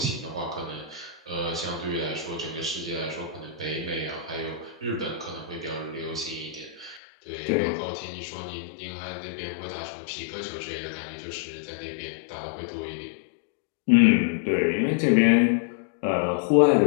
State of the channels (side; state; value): right; drops out; at 7.0 s